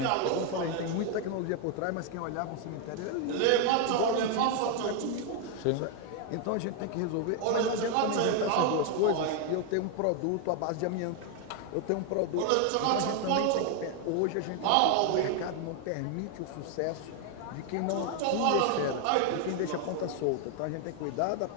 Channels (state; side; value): different; both; correlation 0.01